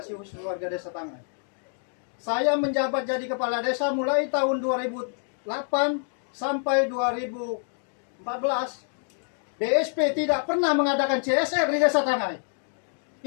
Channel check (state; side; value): silent; right; digital silence